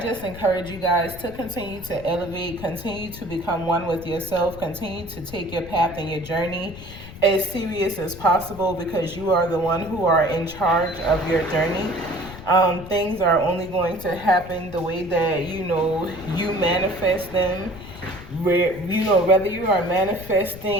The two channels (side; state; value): left; noise; rumble, 14 dB below the sound